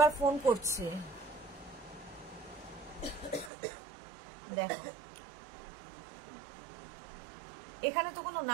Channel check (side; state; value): left; drops out; at 3.5 s